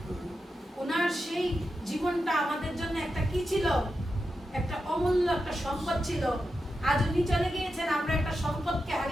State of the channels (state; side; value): normal; both; correlation 0.89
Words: ওনার সেই জীবনটা আমাদের জন্য একটা কি ছিল, একটা অমূল্য একটা সম্পদ ছিল। আজ উনি চলে গিয়েছেন, আমরা একটা সম্পদকে